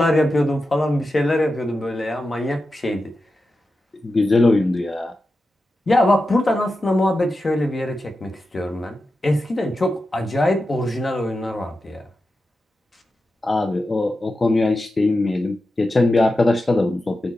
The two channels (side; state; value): both; normal; correlation 0.91